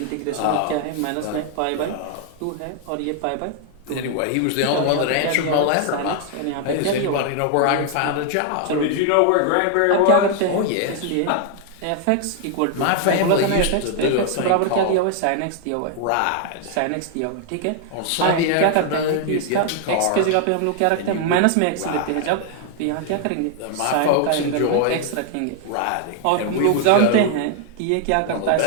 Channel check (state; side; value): different; both; correlation 0.00